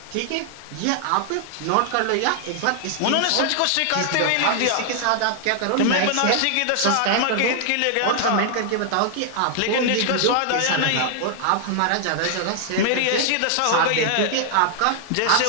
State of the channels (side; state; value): both; different; correlation 0.00